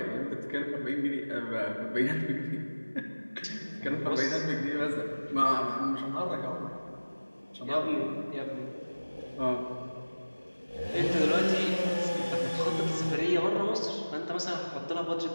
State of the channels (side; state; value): both; inverted; correlation -1.00